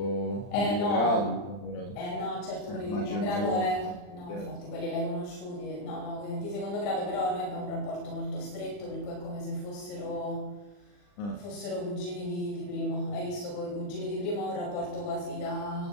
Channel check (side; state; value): right; late; 40 ms